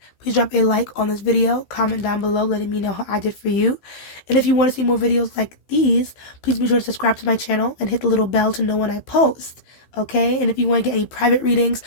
please drop a like on this video, comment down below letting me know how I did for you. And if you want to see more videos like these, please be sure to subscribe to my channel and hit the little bell to know when I post. Okay? And if you want to get any private readings,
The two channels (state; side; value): late; right; 15 ms